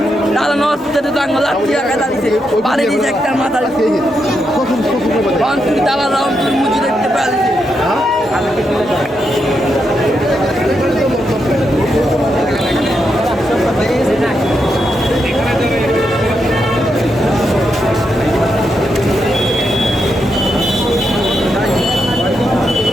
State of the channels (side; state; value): both; normal; correlation 0.83